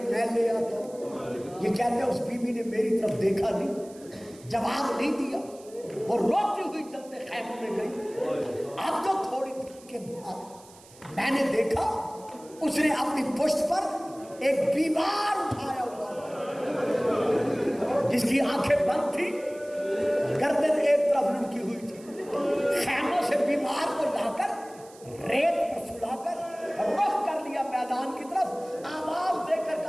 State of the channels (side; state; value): right; noise; hiss, 23 dB below the sound